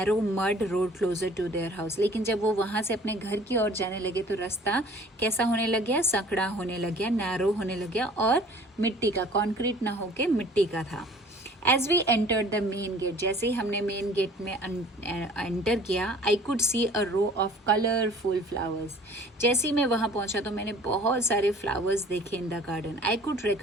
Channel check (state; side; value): normal; both; correlation 0.50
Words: mud road closer to their house. लेकिन जब वो वहाँ से अपने घर की ओर जाने लगे तो रास्ता कैसा होने लग गया? संकड़ा होने लग गया, नैरो होने लग गया और मिट्टी का, कॉन्क्रीट ना होके मिट्टी का था। As we entered the main gate, जैसे ही हमने मेन गेट में एंटर किया, I could see a row of colourful flowers. जैसे ही मैं वहाँ पहुँचा तो मैंने बहुत सारे फ्लावर्स देखे in the garden. I could